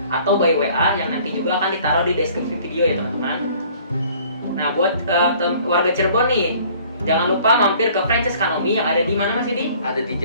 atau by WA yang nanti juga akan ditaruh di deskripsi video ya teman-teman. Nah, buat warga Cirebon nih, jangan lupa mampir ke franchise Kanomi yang ada di mana Mas Yudi? Ada di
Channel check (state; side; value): inverted; both; correlation -0.54